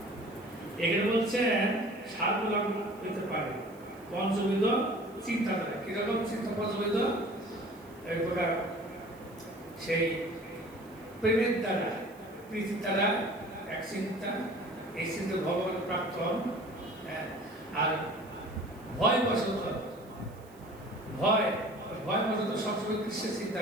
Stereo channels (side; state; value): right; noise; hiss, 27 dB below the sound